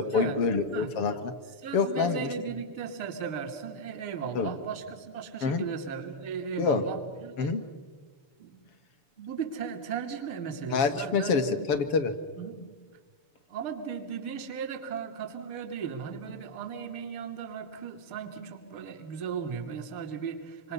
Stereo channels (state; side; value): late; right; 6.9 ms